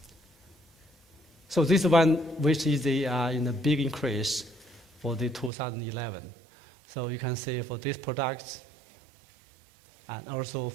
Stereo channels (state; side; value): drops out; left; at 5.5 s